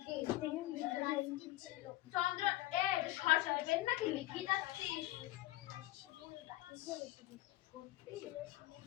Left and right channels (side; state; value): right; quieter; 17.2 dB